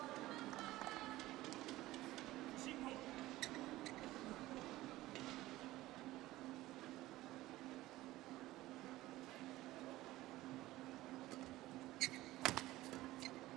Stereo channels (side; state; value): left; quieter; 17.1 dB